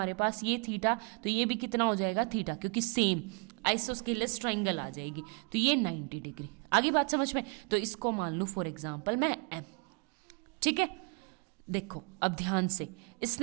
पास ये थीटा, तो ये भी कितना हो जाएगा थीटा, क्योंकि सेम आइसोस्केलस ट्राइंगल आ जाएगी, तो ये 90 डिग्री। आगे बात समझ में। तो इसको मान लूँ फॉर एग्जाम्पल मैं एम। ठीक है, देखो अब ध्यान से,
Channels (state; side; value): quieter; left; 35.0 dB